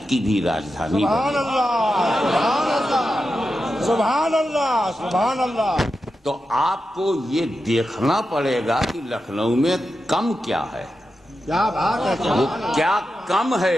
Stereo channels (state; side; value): normal; both; correlation 0.89